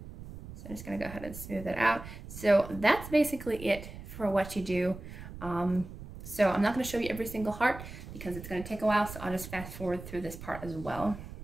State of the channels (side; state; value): right; noise; rumble, 13 dB below the sound